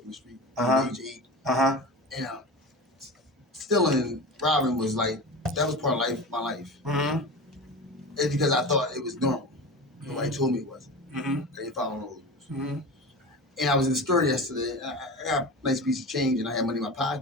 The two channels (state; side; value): normal; both; correlation 0.30